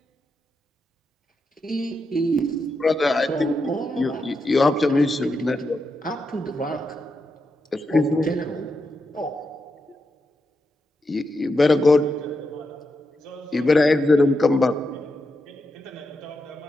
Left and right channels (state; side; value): normal; both; correlation 0.85